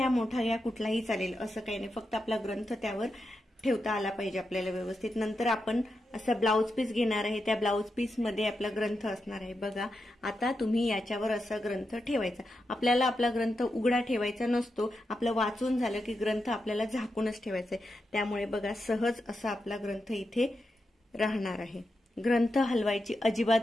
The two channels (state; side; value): normal; both; correlation 0.87